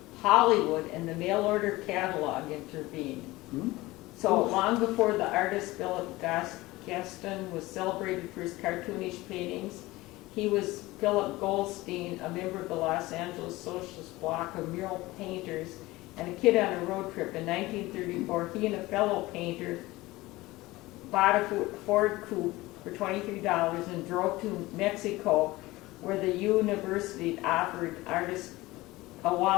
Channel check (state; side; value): quieter; right; 19.6 dB